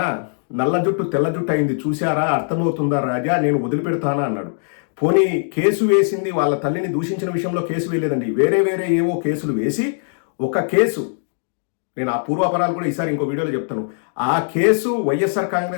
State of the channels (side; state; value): right; silent; digital silence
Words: నల్ల జుట్టు తెల్ల జుట్టు అయింది చూశారా, అర్థమవుతుందా రాజా, నేను వదిలిపెడతానా అన్నాడు. పోనీ కేసు వేసింది వాళ్ళ తల్లిని దూషించిన విషయంలో కేసు వేయలేదండి, వేరే ఏవో కేసులు వేసి ఒక కేసు, నేను ఆ పూర్వాపరాలు కూడా ఈసారి ఇంకో వీడియోలో చెప్తాను. ఆ కేసు వైఎస్ఆర్